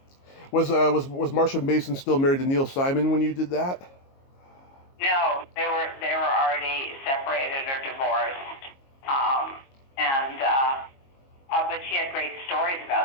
Was Marsha Mason still married to Neil Simon when you did that? No, they were already separated or divorced, but she had great stories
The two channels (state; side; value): late; right; 22 ms